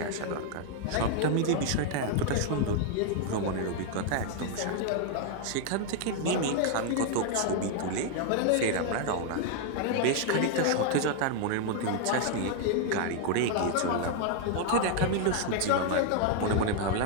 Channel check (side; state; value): both; different; correlation 0.00